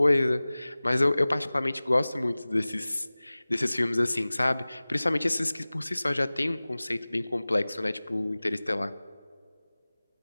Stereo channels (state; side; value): inverted; both; correlation -0.99